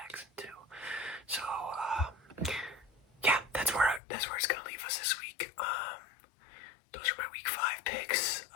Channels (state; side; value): drops out; right; at 4.0 s